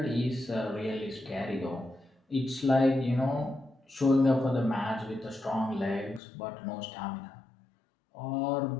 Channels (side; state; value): right; drops out; at 6.2 s